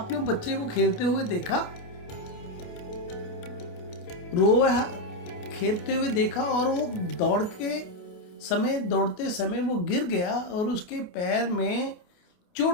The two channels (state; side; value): late; right; 28 ms